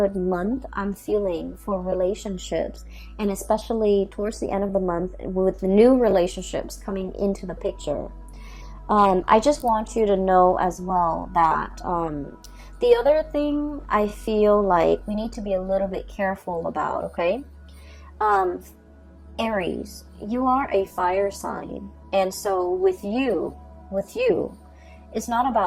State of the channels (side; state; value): both; identical; correlation 1.00